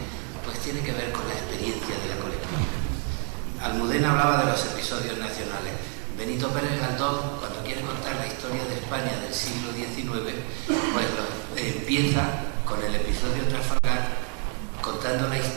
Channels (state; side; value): quieter; left; 39.9 dB